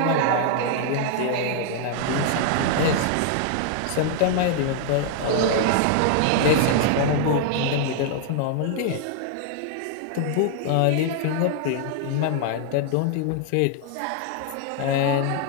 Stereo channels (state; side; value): different; both; correlation 0.00